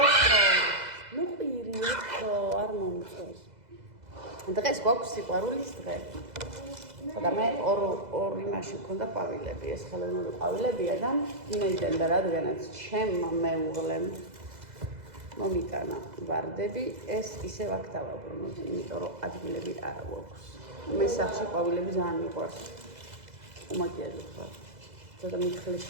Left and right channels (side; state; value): left; late; 2.0 ms